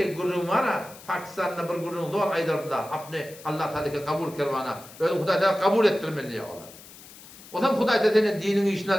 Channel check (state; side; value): noise; left; hiss, 19 dB below the sound